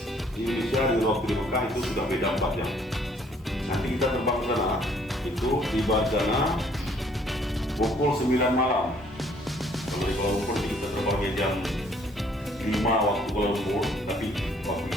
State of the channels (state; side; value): normal; both; correlation 0.62